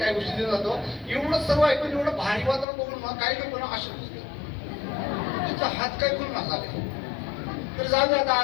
गोष्टी देत जातो. एवढं सर्व ऐकून एवढं भारी वातावरण बघून मग काही लोक ना असे तुमचा हात काय करून नसावे. तर जाऊ दे, आता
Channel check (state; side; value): drops out; right; at 2.7 s